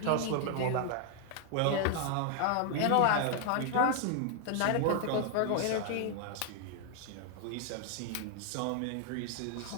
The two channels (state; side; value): different; both; correlation 0.00